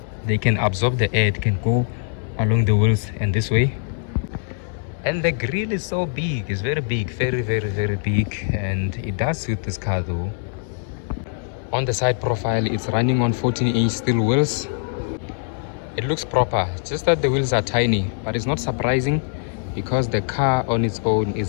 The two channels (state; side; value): silent; right; 64 dB below the other